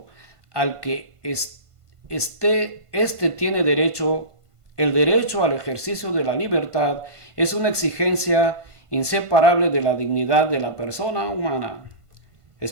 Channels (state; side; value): late; left; 1.5 ms